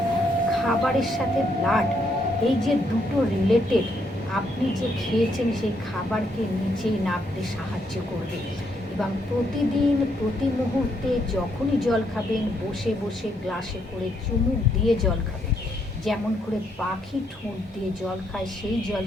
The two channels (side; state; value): both; normal; correlation 0.74